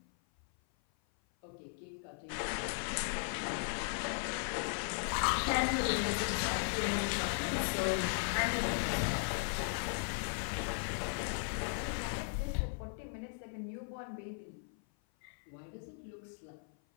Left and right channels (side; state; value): right; silent; 53 dB below the other